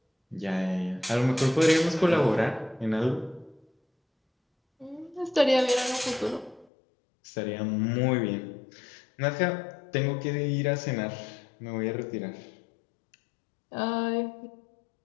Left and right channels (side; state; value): right; drops out; at 6.7 s